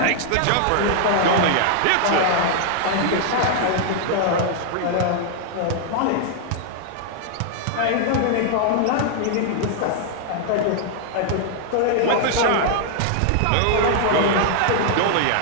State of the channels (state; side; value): different; both; correlation 0.00